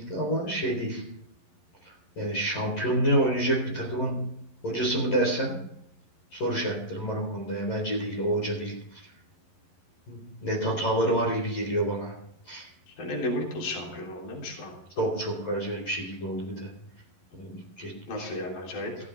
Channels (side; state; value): right; late; 11 ms